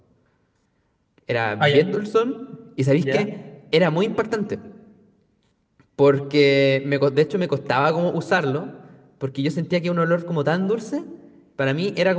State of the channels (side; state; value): both; identical; correlation 1.00